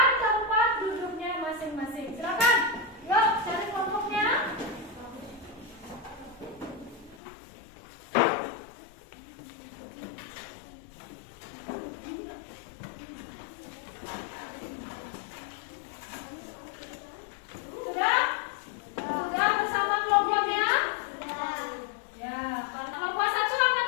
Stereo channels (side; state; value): right; drops out; at 7.2 s